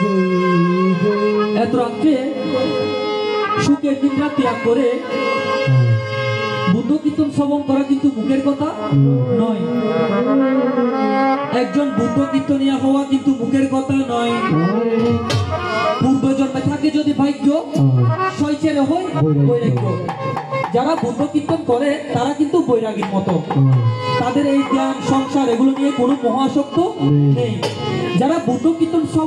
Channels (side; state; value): both; identical; correlation 1.00